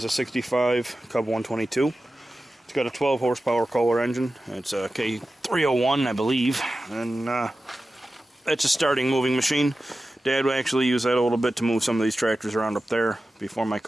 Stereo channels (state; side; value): normal; both; correlation 0.94